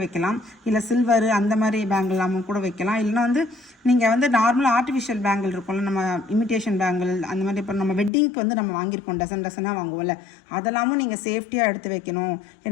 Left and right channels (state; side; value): drops out; right; at 8.1 s